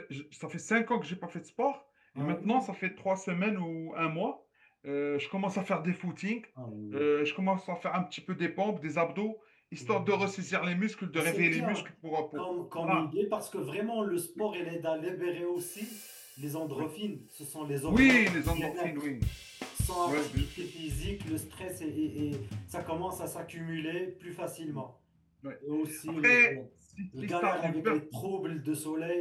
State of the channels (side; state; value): both; identical; correlation 1.00